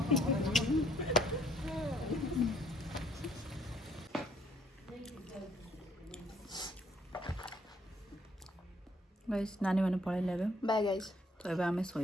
गाइस नानी माने पळे लेबे बाय गाइस तो एबे आमे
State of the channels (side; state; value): both; normal; correlation 0.64